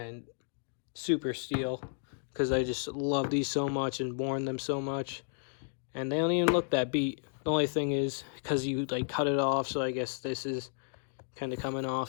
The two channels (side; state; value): right; silent; digital silence